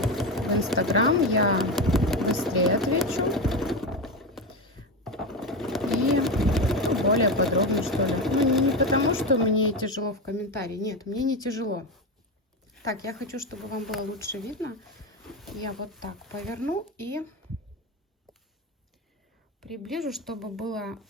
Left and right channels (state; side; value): normal; both; correlation 0.17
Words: в Инстаграм, я быстрее отвечу. И более подробно, что ли. Ну, не потому, что мне тяжело в комментарии. Нет, мне не тяжело. Так, я хочу, чтобы вам было лучше видно. Я вот так поверну и приближу, чтобы было